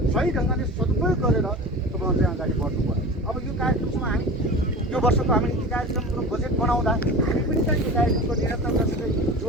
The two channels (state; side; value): normal; both; correlation 0.34